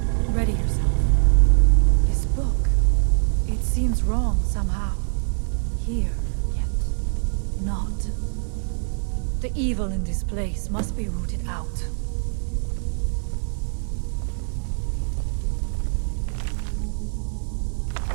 Ready yourself. This book, it seems wrong somehow. Here, yet not. The evil in this place must be rooted out.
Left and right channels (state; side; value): silent; left; 63 dB below the other